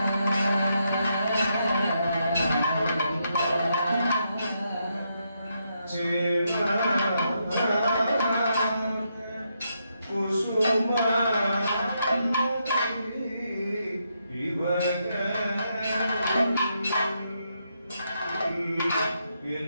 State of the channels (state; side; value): inverted; both; correlation -0.80